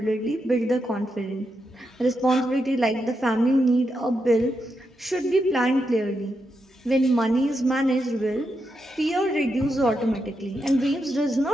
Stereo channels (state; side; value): normal; both; correlation 0.84